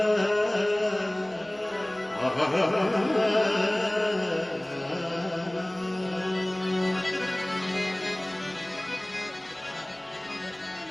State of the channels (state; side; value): noise; right; hum, 30 dB below the sound